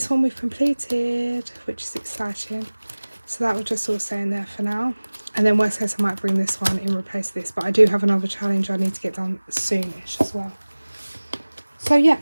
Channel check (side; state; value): both; inverted; correlation -1.00